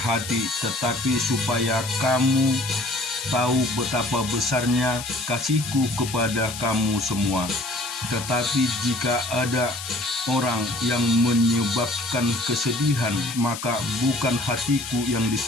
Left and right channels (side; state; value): left; noise; hiss, 9 dB below the sound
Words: tetapi supaya kamu tahu betapa besarnya kasihku kepada kamu semua. Tetapi jika ada orang yang menyebabkan kesedihan, maka bukan hatiku yang